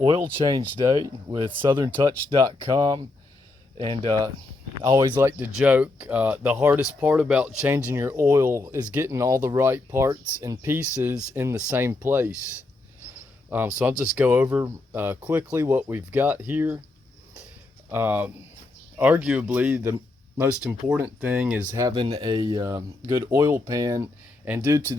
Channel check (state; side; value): quieter; right; 3.2 dB